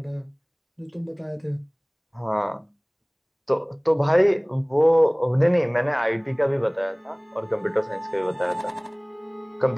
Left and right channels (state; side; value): identical; both; correlation 1.00